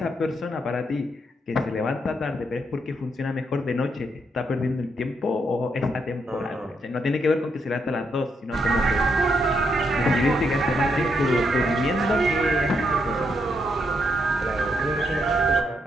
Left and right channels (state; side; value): normal; both; correlation 0.78